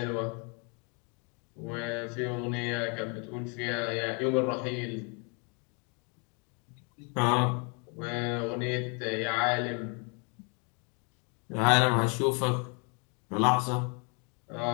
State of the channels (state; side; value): quieter; right; 35.9 dB